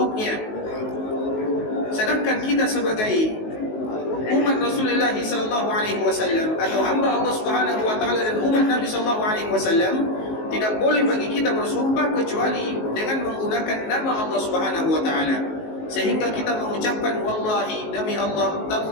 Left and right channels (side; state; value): right; late; 19 ms